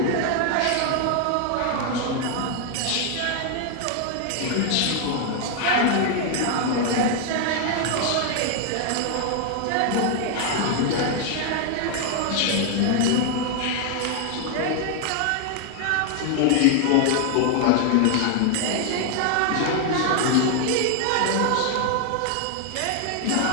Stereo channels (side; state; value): both; different; correlation 0.00